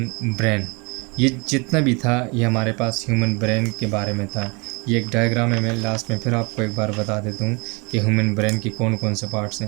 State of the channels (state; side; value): quieter; left; 29.5 dB